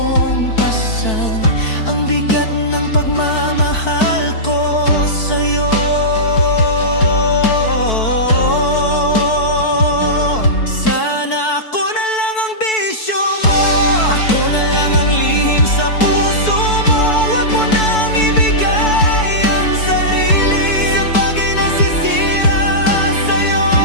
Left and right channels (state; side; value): late; right; 4.6 ms